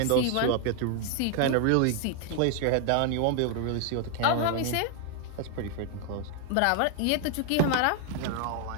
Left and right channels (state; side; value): different; both; correlation 0.00